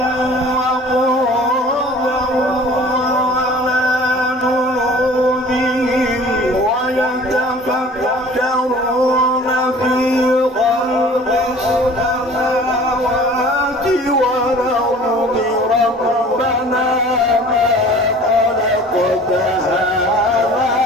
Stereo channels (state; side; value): normal; both; correlation 0.46